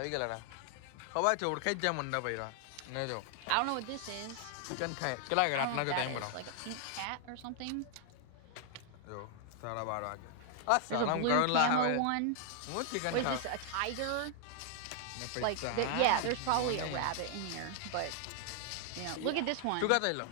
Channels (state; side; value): different; both; correlation 0.00